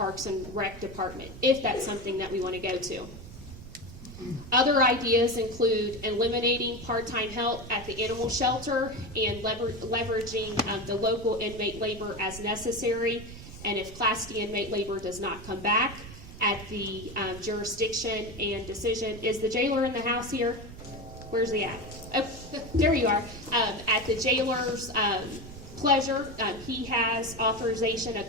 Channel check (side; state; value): right; noise; rumble, 14 dB below the sound